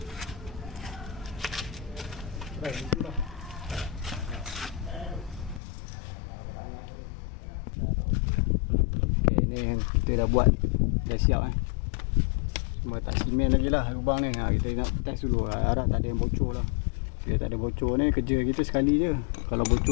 Okey, ni yang dia dah buat, dah siap cuma tak simen lagi lah lubang ni. Kita nak test dulu, harap tak ada yang bocor lah. Bila tak ada bocor ni, kerja kita sekali je. Kalau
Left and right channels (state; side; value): drops out; right; at 5.6 s